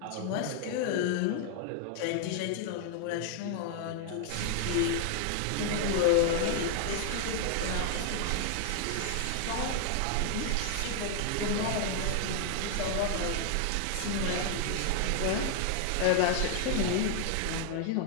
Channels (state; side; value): different; both; correlation 0.00